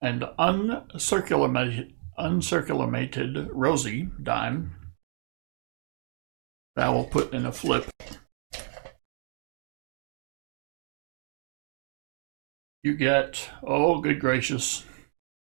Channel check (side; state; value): left; silent; digital silence